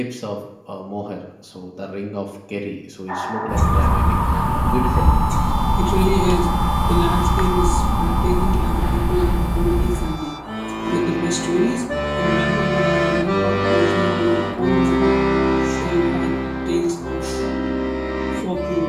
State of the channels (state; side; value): identical; both; correlation 1.00